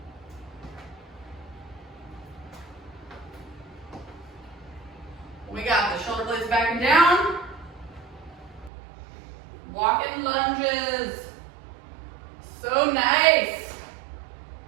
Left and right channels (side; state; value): left; drops out; at 8.7 s